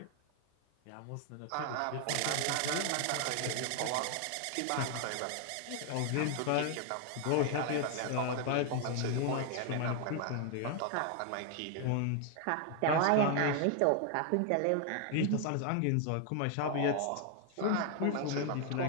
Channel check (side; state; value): both; different; correlation 0.00